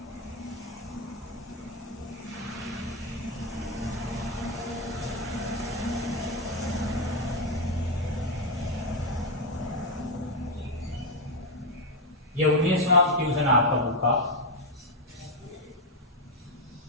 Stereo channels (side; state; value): both; normal; correlation 0.05